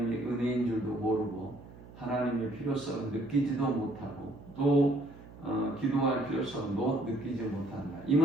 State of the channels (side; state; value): right; noise; hum, 18 dB below the sound